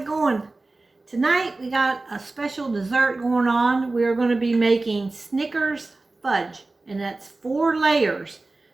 going? Tonight we got a special dessert going on. We are going to be making Snickers fudge, and that's 4 layers.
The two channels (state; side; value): quieter; left; 3.2 dB